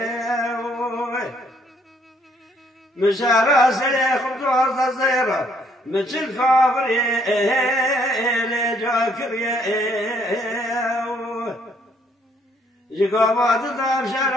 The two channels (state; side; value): normal; both; correlation 0.66